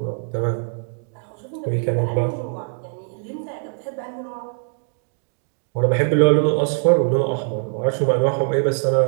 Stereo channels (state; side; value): silent; left; digital silence